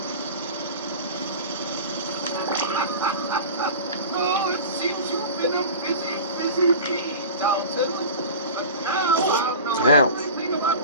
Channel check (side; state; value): both; inverted; correlation -0.35